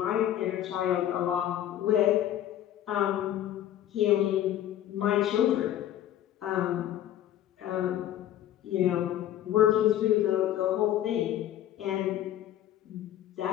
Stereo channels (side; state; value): right; quieter; 11.9 dB